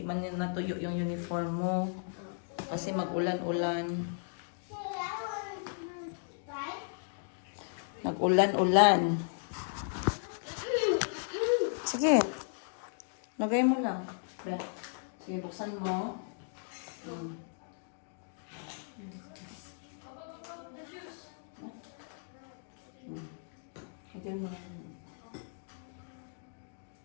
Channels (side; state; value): right; silent; digital silence